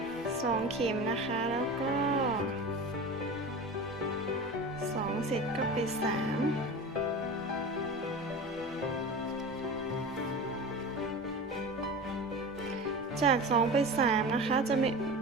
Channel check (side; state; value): both; normal; correlation 0.31